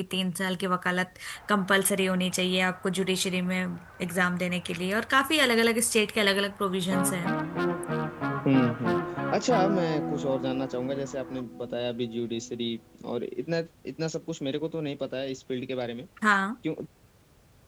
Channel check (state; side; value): identical; both; correlation 1.00